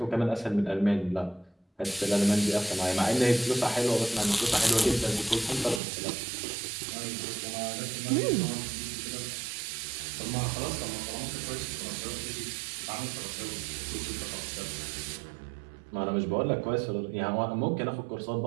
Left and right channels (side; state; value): left; drops out; at 5.8 s